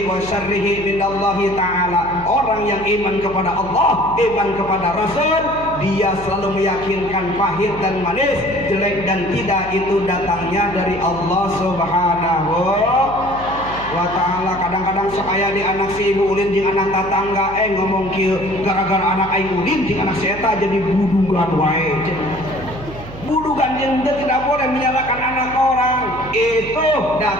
wa syarrihi minallahi ta'ala. Orang yang iman kepada Allah, iman kepada Rasul, dia selalu meyakinkan pahit dan manis, jelek dan tidak itu datangnya dari Allah Subhanahu wa ta'ala. Kadang-kadang sok aya di anak si ibu ulin jeung anak tatangga ngomong kieu, gara-gara anak aing ulin jeung anak si eta jadi budugan wae. Budugan yang tidak boleh menyalahkan anak orang, itu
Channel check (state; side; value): noise; right; hum, 14 dB below the sound